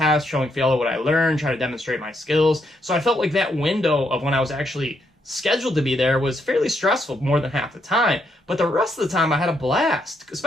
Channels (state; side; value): normal; both; correlation 0.77